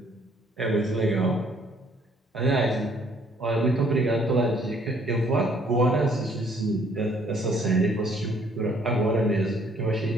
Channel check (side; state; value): both; normal; correlation 0.63